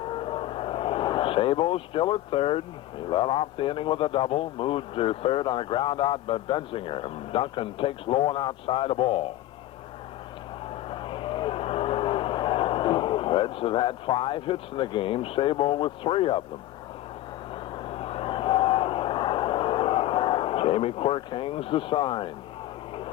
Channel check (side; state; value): right; quieter; 14.7 dB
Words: Sabo still at third. He led off the inning with a double, moved to third on a ground out by Benzinger. And Duncan takes low and outside a ball. Reds have had 5 hits in the game, Sabo with 3 of them. Jamie Quirk hangs the sign.